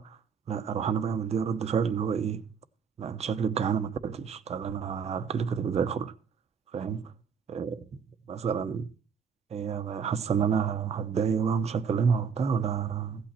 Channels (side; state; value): left; quieter; 6.4 dB